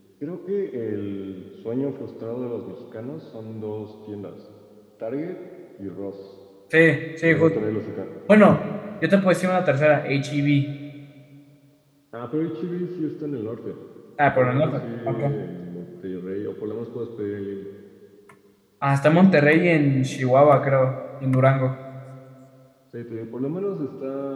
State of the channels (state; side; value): identical; both; correlation 1.00